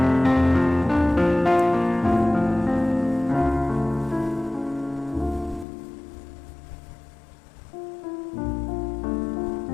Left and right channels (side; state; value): right; drops out; at 5.7 s